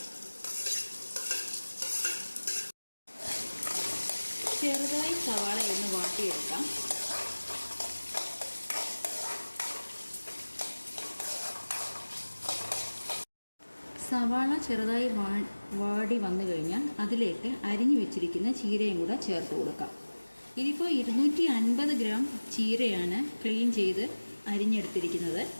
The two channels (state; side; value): inverted; both; correlation -1.00